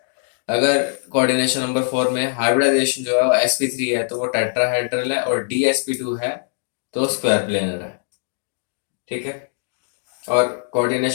अगर कोऑर्डिनेशन नंबर 4 में हाइब्रिडाइजेशन जो है वो sp3 है तो वो टेट्राहेड्रल है, और dsp2 है तो स्क्वायर प्लेनर है। ठीक है। और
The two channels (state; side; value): silent; right; digital silence